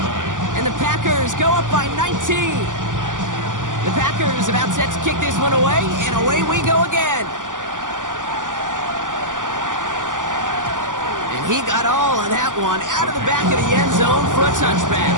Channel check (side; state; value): left; late; 0.88 ms